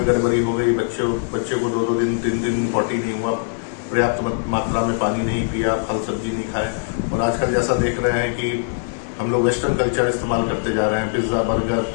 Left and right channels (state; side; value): silent; right; digital silence